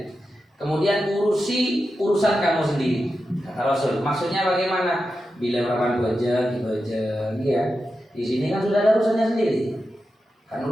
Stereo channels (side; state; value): both; normal; correlation 0.90